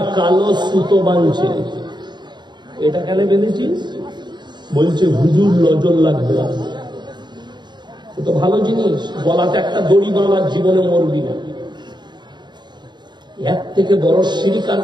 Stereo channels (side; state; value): left; late; 0.21 ms